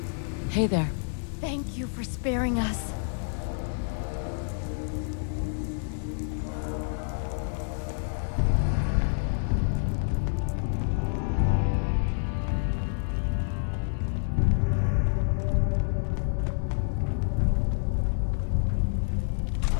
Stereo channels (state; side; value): silent; right; digital silence